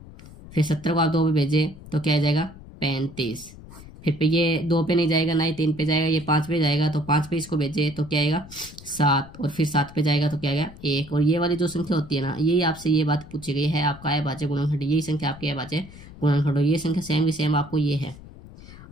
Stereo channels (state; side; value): noise; left; rumble, 18 dB below the sound